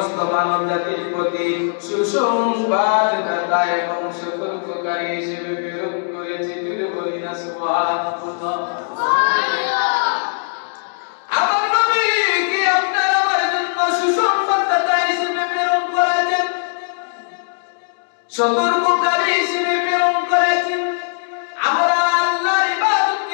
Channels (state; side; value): silent; right; digital silence